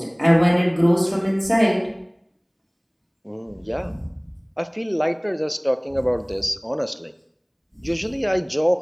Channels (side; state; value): both; identical; correlation 1.00